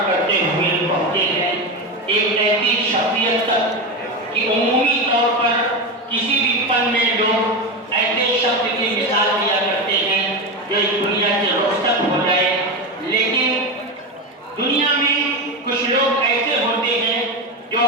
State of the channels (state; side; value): normal; both; correlation 0.17